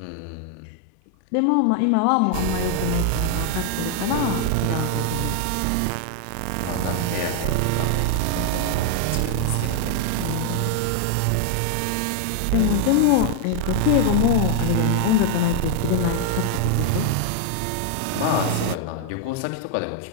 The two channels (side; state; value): both; different; correlation 0.00